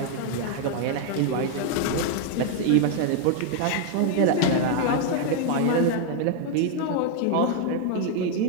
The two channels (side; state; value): both; different; correlation 0.00